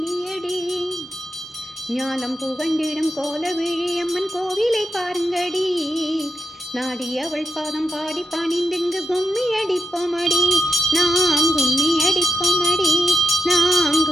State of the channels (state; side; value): normal; both; correlation 0.86